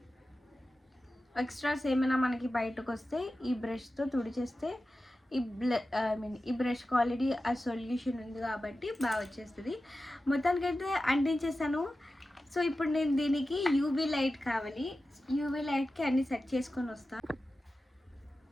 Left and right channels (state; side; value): normal; both; correlation 0.93